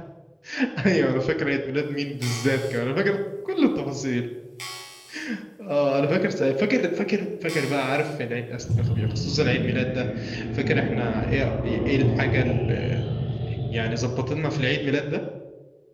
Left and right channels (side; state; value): both; identical; correlation 1.00